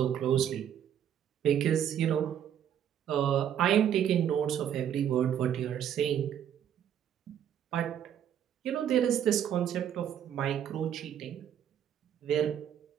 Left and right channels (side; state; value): left; quieter; 9.6 dB